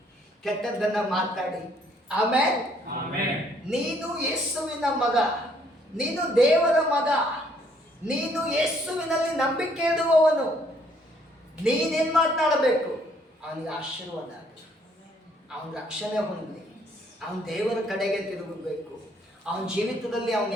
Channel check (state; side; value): normal; both; correlation 0.66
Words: ಕೆಟ್ಟದ್ದನ್ನ ಮಾತಾಡಿ? ಆಮೆನ್. ನೀನು ಯೇಸುವಿನ ಮಗ, ನೀನು ದೇವರ ಮಗ, ನೀನು ಯೇಸುವಿನಲ್ಲಿ ನಂಬಿಕೆ ಇಡುವವನು. ನೀನೇನು ಮಾತನಾಡಬೇಕು? ಅವನಿಗೆ ಆಶೀರ್ವಾದ ಆಗಲಿ, ಅವನ ರಕ್ಷಣೆ ಹೊಂದಲಿ, ಅವನ ದೇವರ ಕಡೆಗೆ ತಿರುಗಬೇಕು. ಅವನ ಜೀವಿತದಲ್ಲಿ ಅವನು